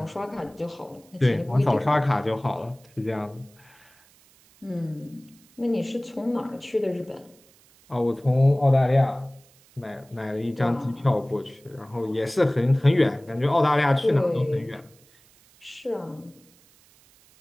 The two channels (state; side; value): noise; right; hiss, 29 dB below the sound